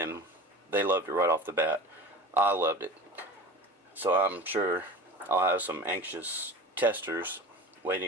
they loved it right off the bat. I loved it. So I'm sure I'll have some anxious testers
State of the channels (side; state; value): both; normal; correlation 0.34